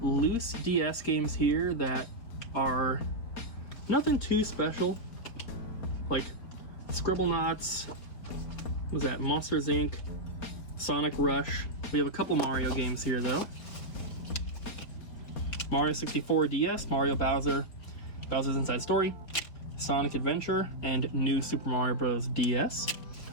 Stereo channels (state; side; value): late; right; 4.1 ms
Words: loose DS games here that are nothing too special. Like Scribblenauts, what was that? Monsters Inc., Sonic Rush. We have a couple Mario games here though. Mario 64 DS, Mario Bowser's Inside Story, Sonic Adventure, and New Super Mario Bros. DS.